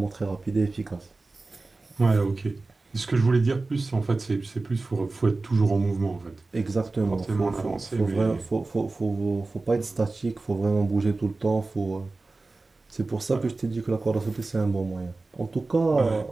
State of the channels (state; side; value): quieter; left; 3.4 dB